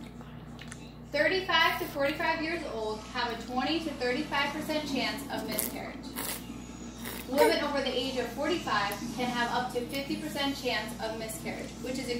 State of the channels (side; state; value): both; identical; correlation 1.00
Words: 35 to 45 years old have a 20 to 35% chance of miscarriage. Women over the age of 45 can have up to 50% chance of miscarriage, which is